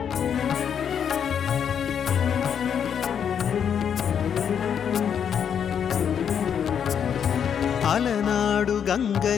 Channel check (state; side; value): quieter; right; 8.0 dB